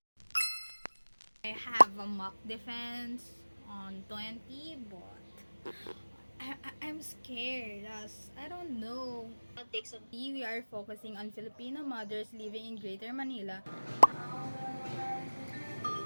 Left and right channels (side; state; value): both; inverted; correlation -1.00